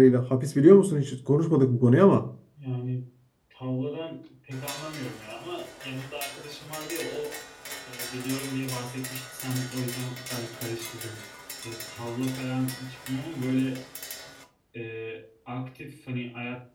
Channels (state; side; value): identical; both; correlation 1.00